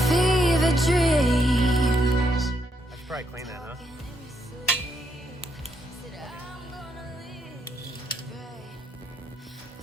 Probably clean that, huh?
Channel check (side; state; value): both; normal; correlation 0.77